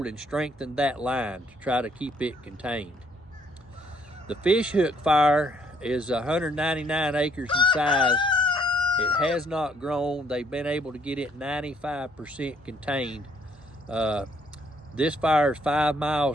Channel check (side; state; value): both; normal; correlation 0.66